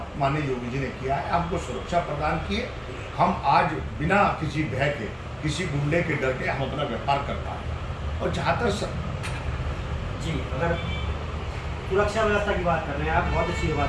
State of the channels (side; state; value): both; identical; correlation 1.00